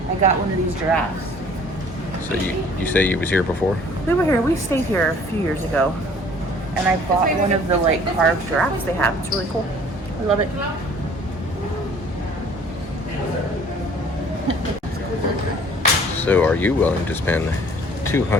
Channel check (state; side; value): normal; both; correlation 0.53